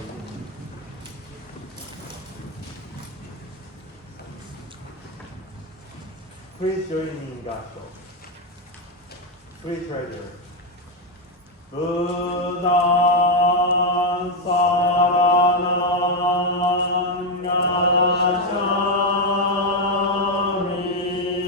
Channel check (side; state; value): both; normal; correlation 0.05